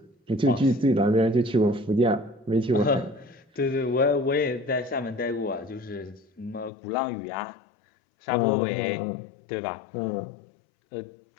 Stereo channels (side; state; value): right; drops out; at 6.7 s